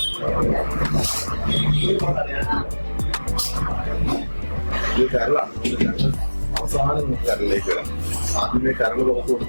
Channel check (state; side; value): inverted; both; correlation -1.00